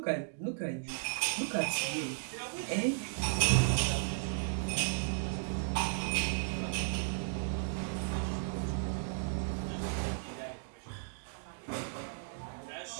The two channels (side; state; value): left; silent; digital silence